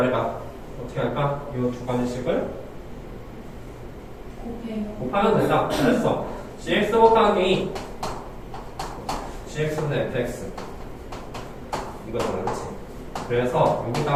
어떻게 할까? 이 두 가지씩을 곱하면 된다. 잘했어. gx 곱하기 gx분의 fx 이거잖아 그렇지? 그래서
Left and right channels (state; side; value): identical; both; correlation 1.00